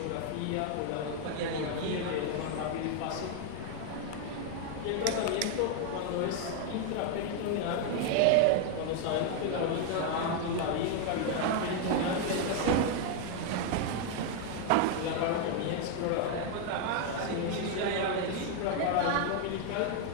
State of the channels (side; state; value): both; different; correlation 0.01